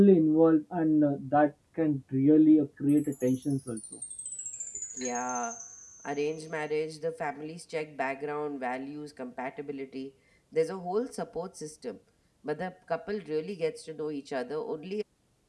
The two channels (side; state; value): both; identical; correlation 1.00